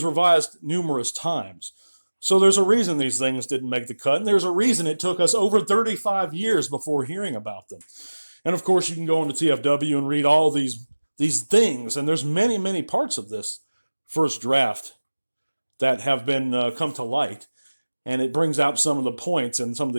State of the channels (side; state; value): both; inverted; correlation -1.00